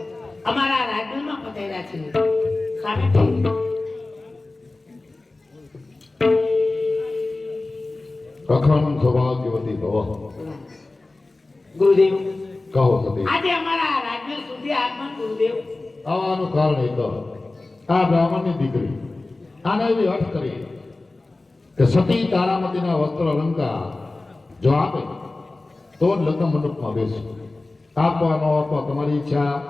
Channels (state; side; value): quieter; right; 3.2 dB